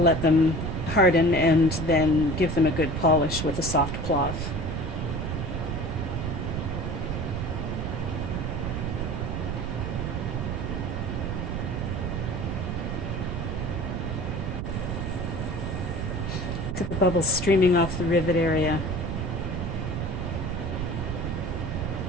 them harden and then give them a good polish with a soft cloth. Look at the bubbles streaming off the rivet area.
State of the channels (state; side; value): noise; right; rumble, 3 dB below the sound